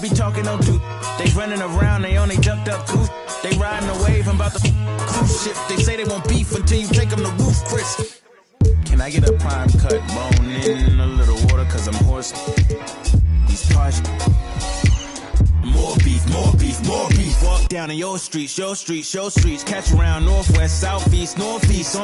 be talking no do. They running around, they only ducked up goose. They riding the wave, I'm about to cruise ship. They say they won't beef until you take them to roof, Chris. Can I get a prime cut, bone in a little water, cause I'm hoarse. These cars. More beef, more beef, more beef. Walk down in your streets, your streets, your streets. Catch around northwest, southeast, northeast.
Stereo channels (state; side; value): identical; both; correlation 1.00